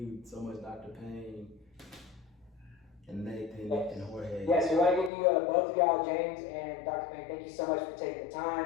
so much, Dr. Payne and Nathan and Jorge. Yes, we want to give you both of y'all, James and Dr. Payne, thank you so much for taking the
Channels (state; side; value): drops out; right; at 5.1 s